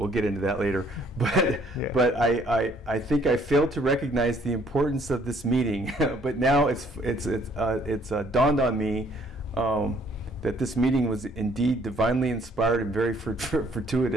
get into that later. But yeah. But I think I failed to recognize the importance of this meeting. But now it's dawned on me that this meeting was indeed divinely inspired and very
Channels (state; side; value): normal; both; correlation 0.62